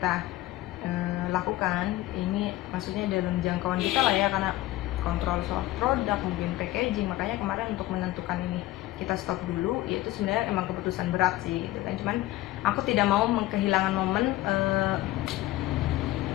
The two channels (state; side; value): quieter; right; 16.6 dB